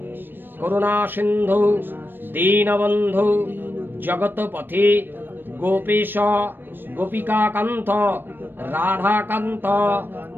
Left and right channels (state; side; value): late; left; 0.095 ms